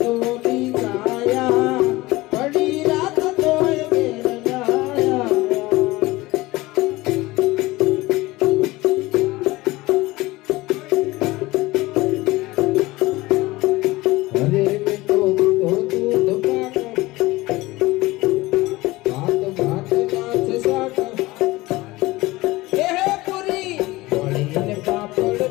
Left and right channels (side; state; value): right; quieter; 19.9 dB